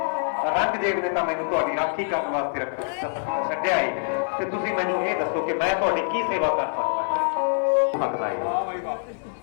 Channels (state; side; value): silent; right; 62 dB below the other